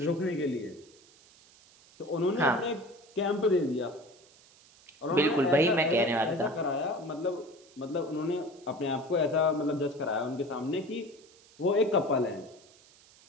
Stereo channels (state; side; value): noise; right; hiss, 26 dB below the sound